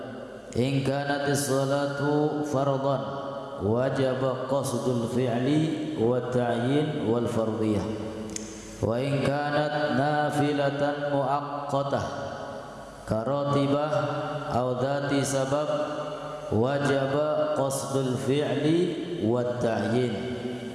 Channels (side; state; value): both; identical; correlation 1.00